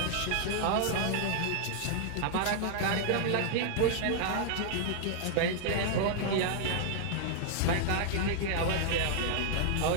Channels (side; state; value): both; different; correlation -0.01